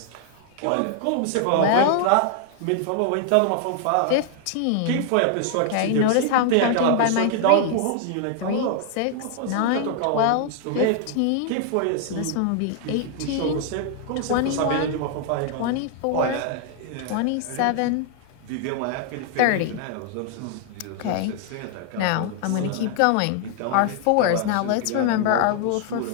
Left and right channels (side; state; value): both; different; correlation 0.00